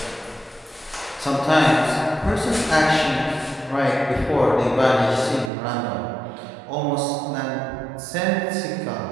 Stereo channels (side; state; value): left; drops out; at 5.5 s